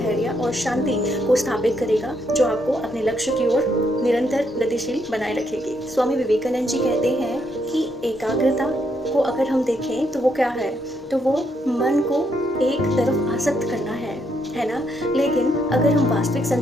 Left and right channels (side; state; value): both; normal; correlation 0.75